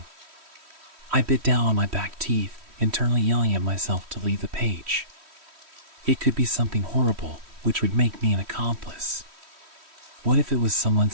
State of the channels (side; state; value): left; late; 3.1 ms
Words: I bit down on my back teeth, internally yelling at myself to leave the page. It could be something horrible, which would make me an accomplice. What if it was someone